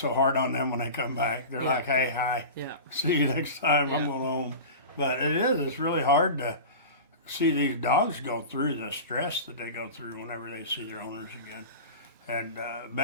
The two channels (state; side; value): inverted; both; correlation -0.31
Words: hard on them when they come back. They're like, hey, hi, Yeah. see you next time, I'm going home. But it's really hard to see these dogs go through the stress that they go through whenever they see their owners again. And